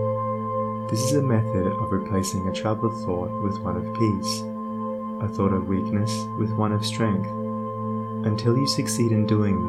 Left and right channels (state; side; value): identical; both; correlation 1.00